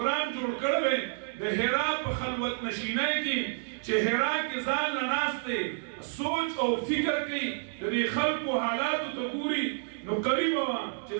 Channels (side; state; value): left; silent; digital silence